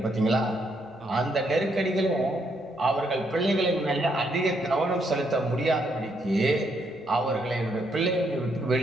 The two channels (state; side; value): normal; both; correlation 0.75